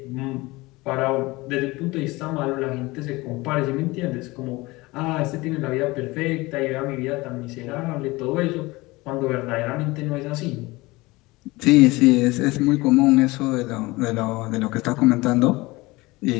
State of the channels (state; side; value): quieter; right; 21.8 dB